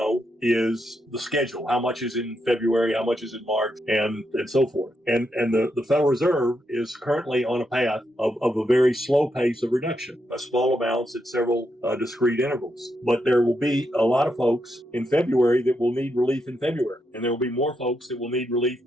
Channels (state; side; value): normal; both; correlation 0.82